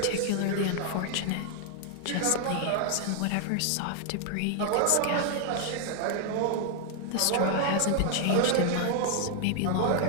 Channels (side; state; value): both; different; correlation 0.00